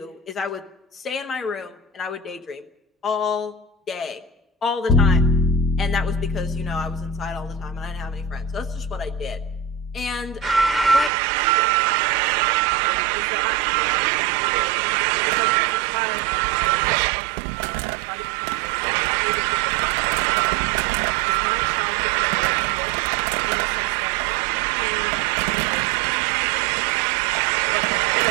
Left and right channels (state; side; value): drops out; left; at 11.1 s